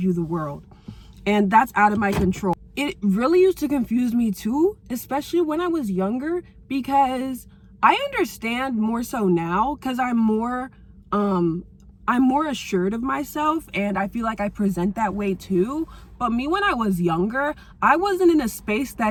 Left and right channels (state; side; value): identical; both; correlation 1.00